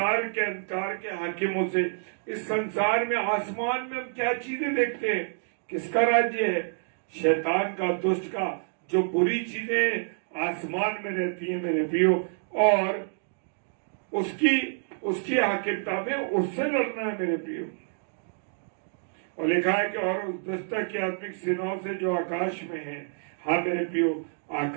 के अंधकार के हाकिमों से। इस संसार में, आसमान में हम क्या चीजें देखते हैं? किसका राज्य है? शैतान का, दुष्ट का। जो बुरी चीजें आसमान में रहती हैं मेरे प्रियो, और उसकी हाकिमता में उससे लड़ना है मेरे प्रियो। और लिखा है कि और उस दुष्ट की आत्मिक सेनाओं से जो आकाश में है। हाँ मेरे प्रियो,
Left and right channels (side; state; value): left; silent; digital silence